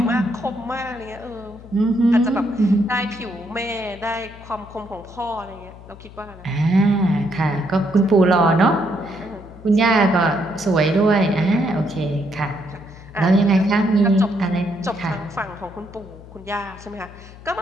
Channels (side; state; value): left; noise; hum, 18 dB below the sound